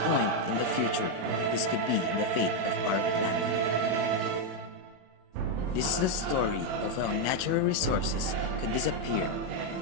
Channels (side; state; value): left; late; 33 ms